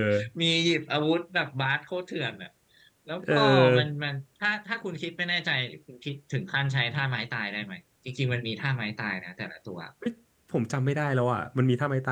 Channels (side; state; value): both; identical; correlation 1.00